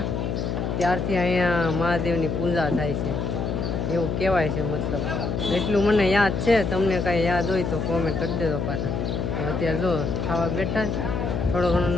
ત્યારથી અહીંયા મહાદેવની પૂજા થાય છે એવું કહેવાય છે. મતલબ એટલું મને યાદ છે. તમને કાંઈ યાદ હોય તો કોમેન્ટ કરી દેજો પાછા. અત્યારે જો ખાવા બેઠા, થોડો ઘણો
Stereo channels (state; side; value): noise; left; hum, 1 dB below the sound